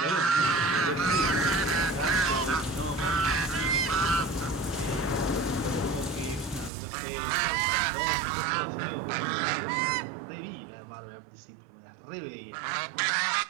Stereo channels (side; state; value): left; drops out; at 6.7 s